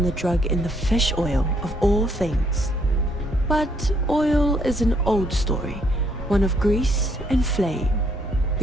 the drug in the fish oil, of all things. But oil is an old story, one of grease and flame.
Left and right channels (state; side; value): normal; both; correlation 0.70